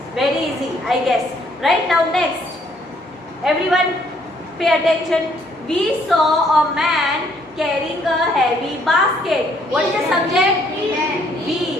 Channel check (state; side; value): normal; both; correlation 0.66